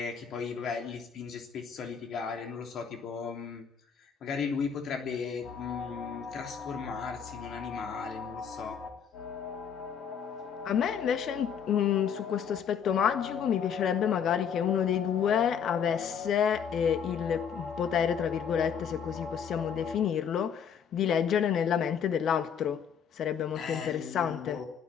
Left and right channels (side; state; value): right; quieter; 7.5 dB